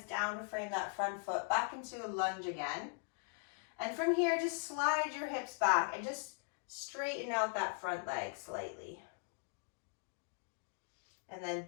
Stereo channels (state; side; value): silent; right; 51 dB below the other